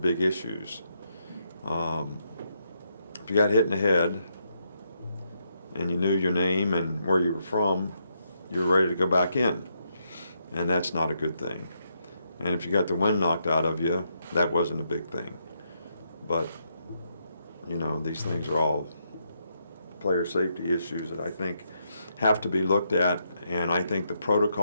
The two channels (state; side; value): inverted; both; correlation -0.79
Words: big issues. If you got hit in the head and you knew your name and where you were from, you were ready to go back in, and that's not a good thing. And if you got the wind knocked out of you, that wasn't a big thing. But you know, these things are all player safety issues that I think have to be looked at, and I think the